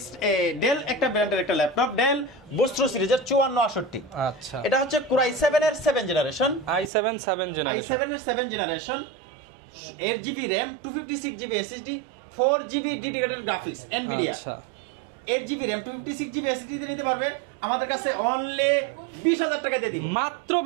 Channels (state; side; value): drops out; left; at 6.9 s